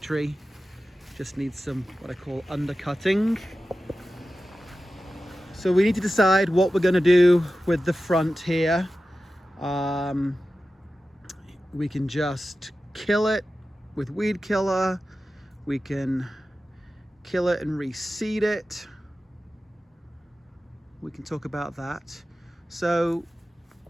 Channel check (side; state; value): both; normal; correlation 0.94